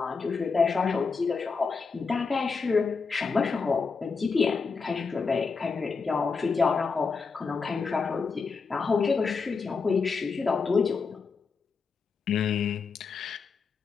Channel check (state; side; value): quieter; right; 4.9 dB